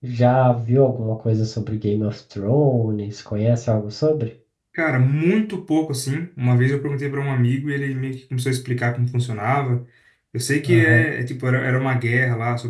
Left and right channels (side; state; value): both; identical; correlation 1.00